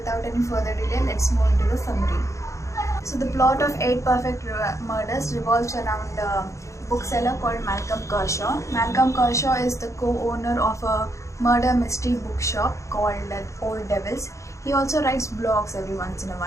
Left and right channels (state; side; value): late; right; 0.15 ms